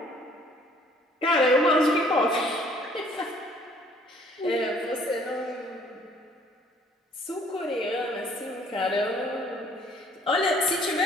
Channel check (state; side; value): normal; both; correlation 0.59